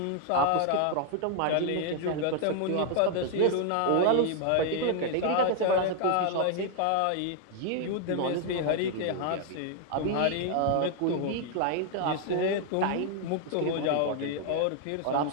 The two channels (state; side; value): different; both; correlation 0.00